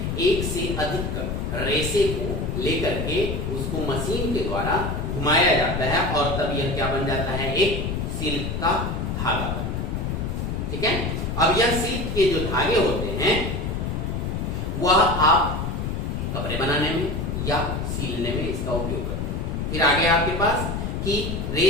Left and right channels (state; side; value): noise; left; rumble, 2 dB below the sound